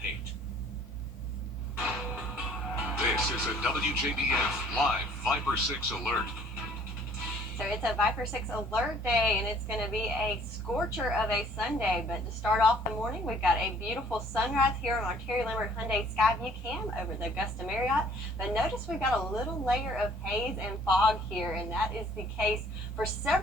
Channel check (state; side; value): normal; both; correlation 0.57